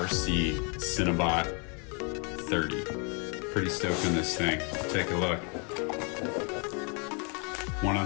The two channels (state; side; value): quieter; right; 35.5 dB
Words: Cinebot 30. Pretty stoked on this thing. Take a look. One of the